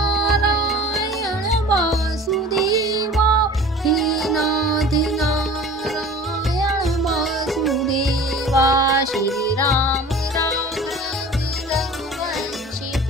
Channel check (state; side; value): normal; both; correlation 0.42